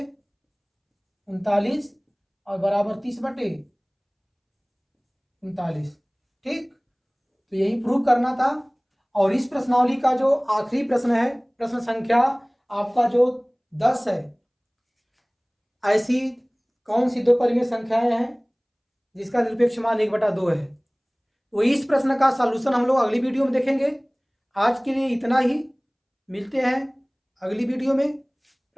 और बराबर 30/39। ठीक, तो यही प्रूव करना था। और इस प्रश्नावली का जो आखिरी प्रश्न है, प्रश्न संख्या आपका जो 10 है, ऐसी कौन सी दो परिमेय संख्याएं हैं जिसका निरपेक्ष मान 1/2 है। तो इस प्रश्न का सॉल्यूशन हम लोग अगली वीडियो में देखेंगे। आज के लिए इतना ही, मिलते हैं अगली वीडियो में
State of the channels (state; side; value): identical; both; correlation 1.00